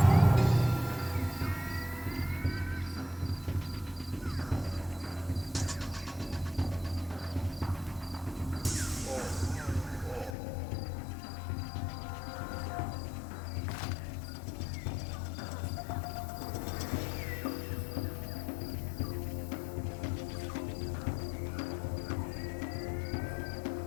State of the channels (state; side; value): drops out; right; at 10.4 s